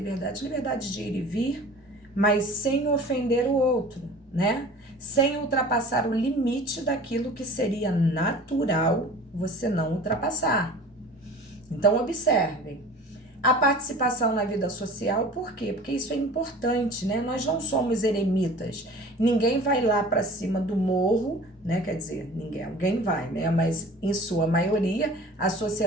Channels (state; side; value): normal; both; correlation 0.43